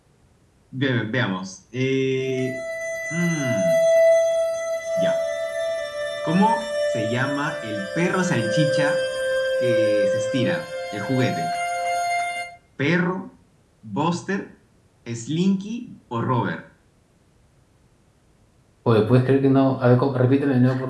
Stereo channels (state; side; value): identical; both; correlation 1.00